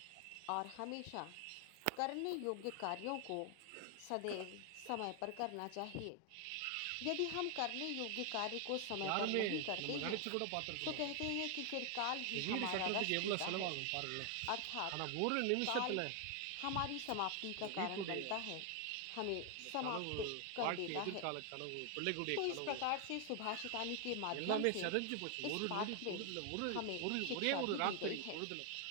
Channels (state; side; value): different; both; correlation 0.00